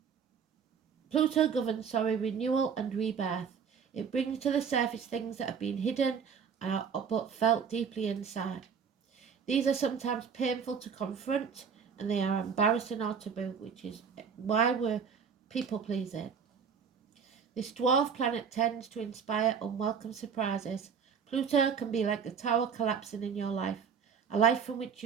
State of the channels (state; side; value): quieter; left; 6.6 dB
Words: renewal and rebirth. It brings to the surface things that have been hidden but felt deeply inside. These are sometimes painful to confront, and they are embarrassing or taboo, which is why we're people pleasing. This dwarf planet tends to inspire unwelcome surprises. Pluto can be like the tower collapsing in your life, a life from which